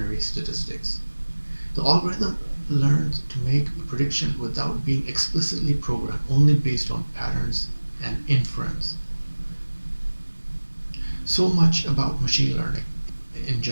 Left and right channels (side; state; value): both; inverted; correlation -1.00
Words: statistics. The algorithm learns to make a prediction without being explicitly programmed, only based on patterns and inference. So much about machine learning in